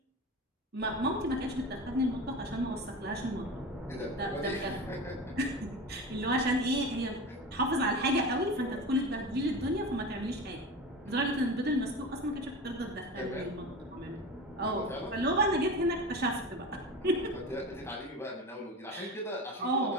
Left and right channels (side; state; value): both; normal; correlation 0.29